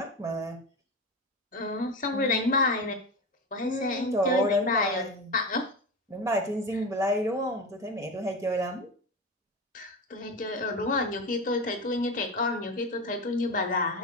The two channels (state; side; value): normal; both; correlation 0.23